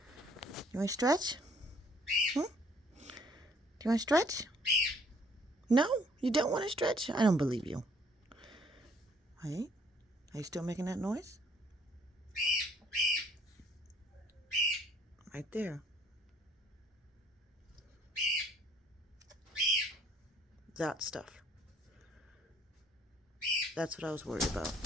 You want to stretch? Do you want to stretch? No? You don't want to stretch? I don't believe you. Hey? Are you still making that noise? Right there. That stuff. That's what I was worried about.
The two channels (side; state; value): both; normal; correlation 0.61